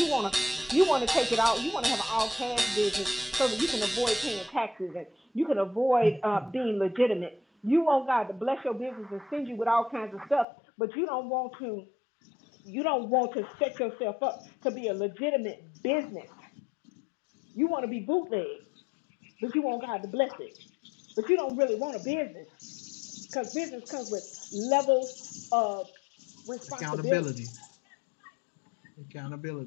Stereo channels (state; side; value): drops out; right; at 10.5 s